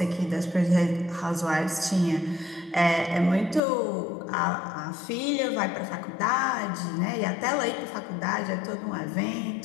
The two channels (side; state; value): right; drops out; at 3.6 s